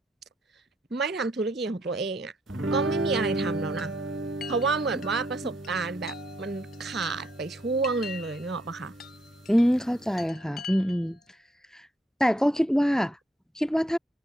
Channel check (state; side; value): normal; both; correlation 0.73